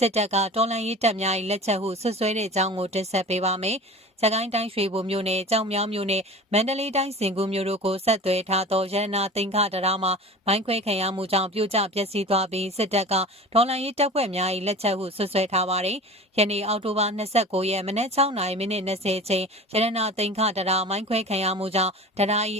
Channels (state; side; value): normal; both; correlation 0.37